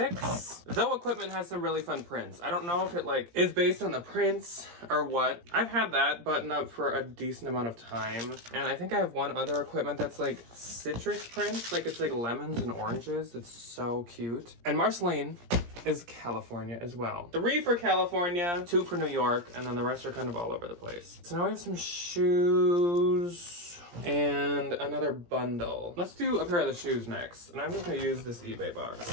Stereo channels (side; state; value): left; late; 17 ms